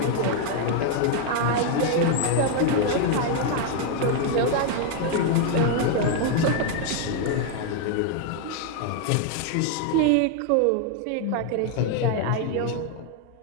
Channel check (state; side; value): different; both; correlation 0.01